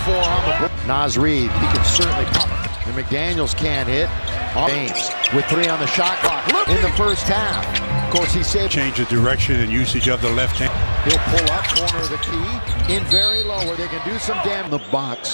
on the book. Nas Reed, he can certainly pop. And McDaniels can't hit. James with three on the shot clock in the first half. Of course, he saved. Change the direction and usage of the left hand. He'll pull up corner of the key in very low where they can do some damage. In the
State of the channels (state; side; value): inverted; both; correlation -1.00